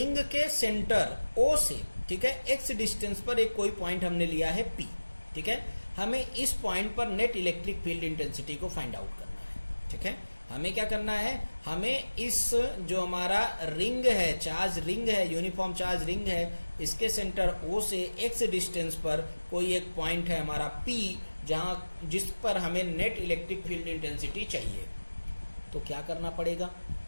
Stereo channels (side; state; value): both; inverted; correlation -1.00